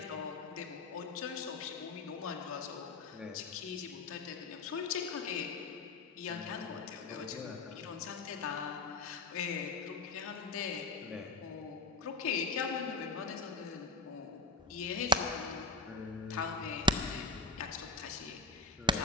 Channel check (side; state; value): right; quieter; 3.2 dB